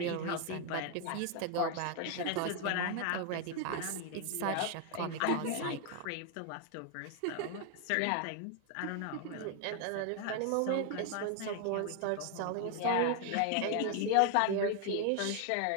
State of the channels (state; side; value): different; both; correlation 0.00